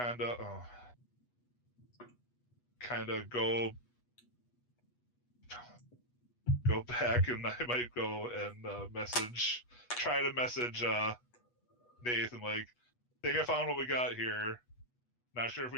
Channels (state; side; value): late; right; 8.2 ms